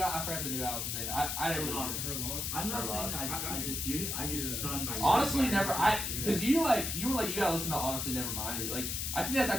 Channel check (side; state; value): left; noise; hiss, 2 dB below the sound